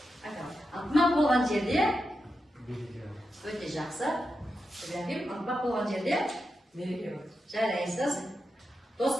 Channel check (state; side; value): normal; both; correlation 0.88